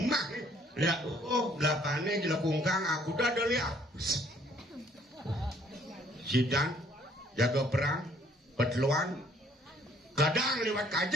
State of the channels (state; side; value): normal; both; correlation 0.62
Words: nih. Lihat, oh belakangnya di lekungkang aku udah ada lihat. Sidang, jaga perang, petluan, kadang lewat